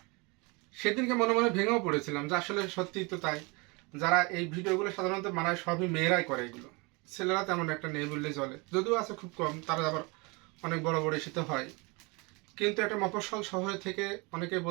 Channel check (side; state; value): left; quieter; 28.3 dB